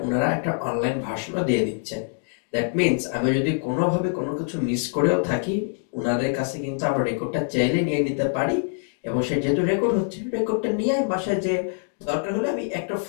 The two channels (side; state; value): right; silent; digital silence